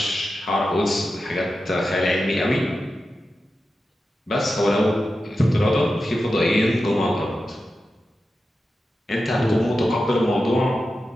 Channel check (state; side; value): normal; both; correlation 0.91